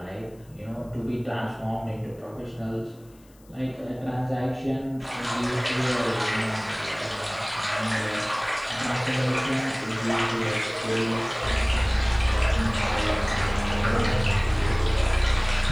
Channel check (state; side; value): noise; left; hiss, 30 dB below the sound